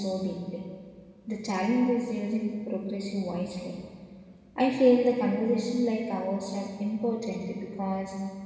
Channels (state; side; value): identical; both; correlation 1.00